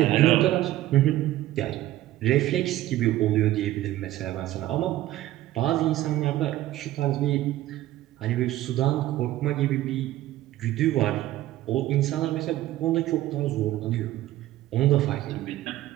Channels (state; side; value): quieter; left; 14.9 dB